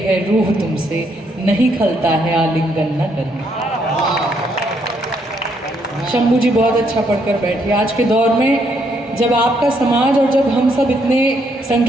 रूह तुमसे, नहीं खलता है आलिंगन न करना। शंभू जी बहुत अच्छा पढ़कर बैठे। आज के दौर में जब आपका समाज और जब हम सब इतने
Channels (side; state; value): both; normal; correlation 0.73